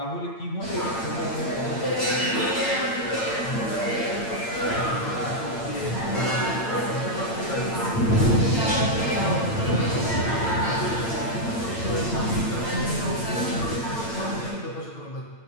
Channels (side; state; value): right; late; 8.8 ms